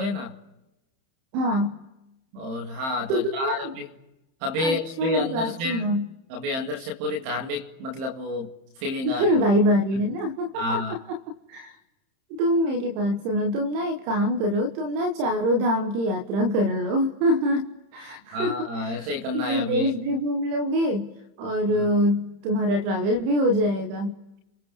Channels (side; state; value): left; late; 30 ms